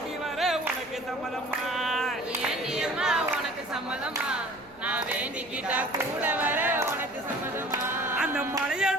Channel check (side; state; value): right; noise; rumble, 26 dB below the sound